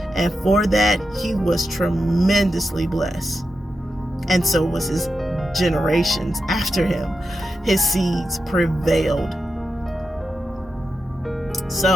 And for that, he was tremendously blessed. And so was his generations after him. His seeds prevailed.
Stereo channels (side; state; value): both; normal; correlation 0.88